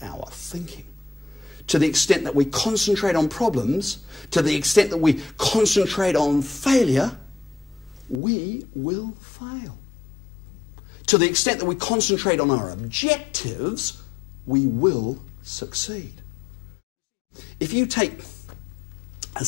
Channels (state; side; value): drops out; right; at 8.2 s